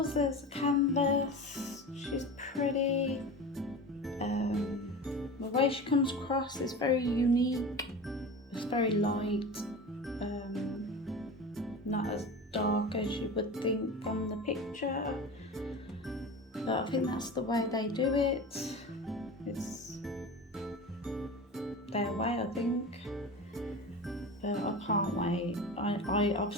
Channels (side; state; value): both; normal; correlation 0.31